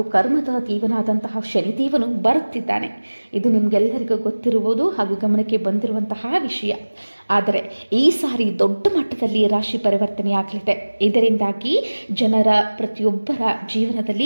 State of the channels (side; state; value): both; inverted; correlation -1.00